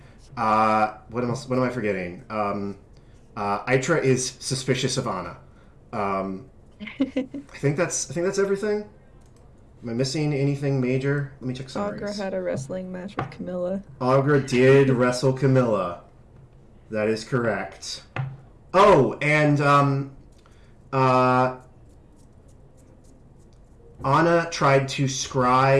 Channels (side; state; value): both; identical; correlation 1.00